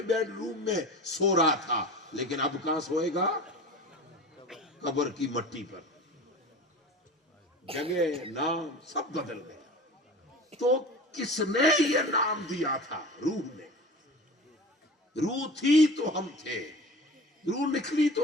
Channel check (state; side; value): normal; both; correlation 0.35